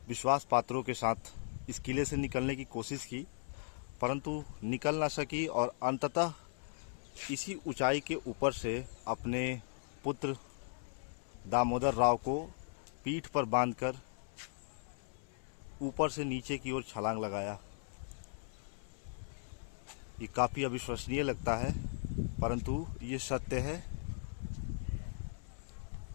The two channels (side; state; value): right; silent; 53 dB below the other